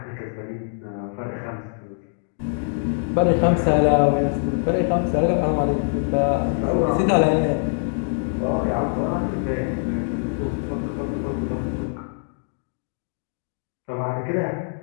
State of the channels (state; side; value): silent; right; digital silence